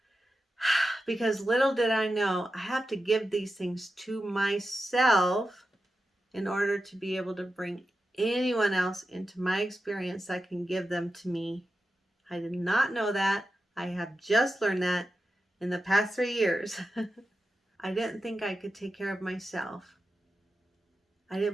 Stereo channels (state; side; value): normal; both; correlation 0.91